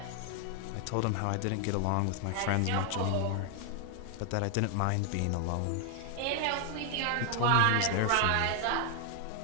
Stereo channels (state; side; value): different; both; correlation 0.00